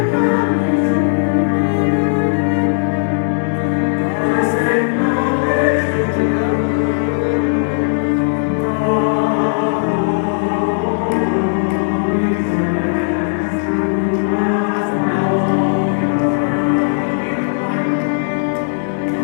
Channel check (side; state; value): right; silent; digital silence